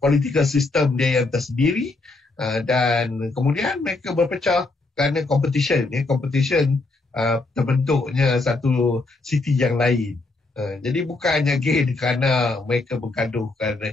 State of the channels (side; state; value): right; quieter; 3.3 dB